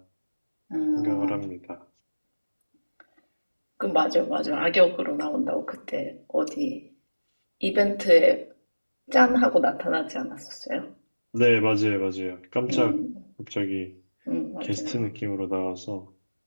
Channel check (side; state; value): both; inverted; correlation -1.00